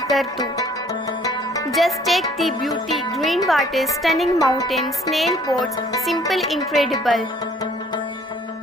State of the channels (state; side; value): normal; both; correlation 0.58